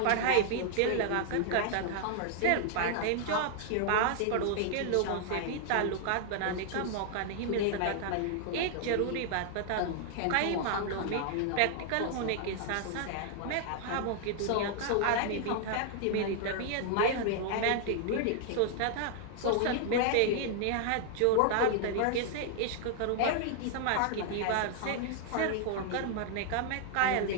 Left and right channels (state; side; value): different; both; correlation -0.01